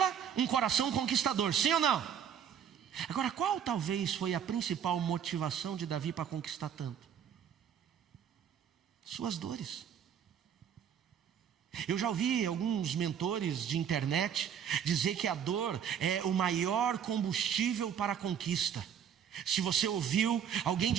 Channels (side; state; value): left; quieter; 8.4 dB